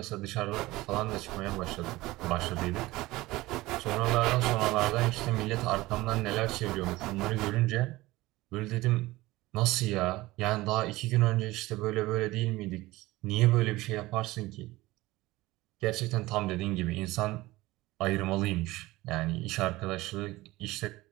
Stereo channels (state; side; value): quieter; left; 19.0 dB